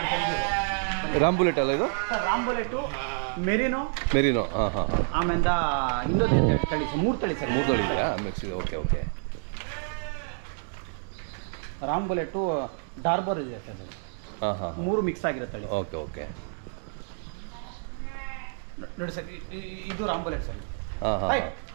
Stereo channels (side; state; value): left; silent; digital silence